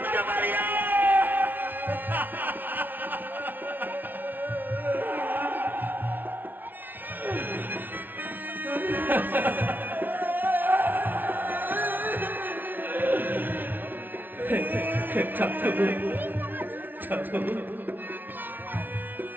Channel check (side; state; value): left; late; 0.088 ms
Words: পারি না। ঠাকুর ঠাকুর